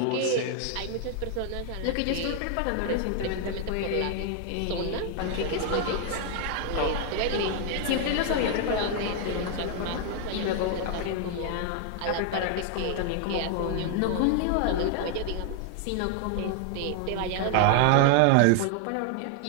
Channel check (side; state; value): both; different; correlation 0.00